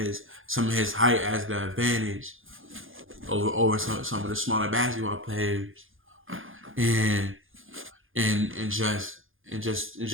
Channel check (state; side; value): late; left; 0.59 ms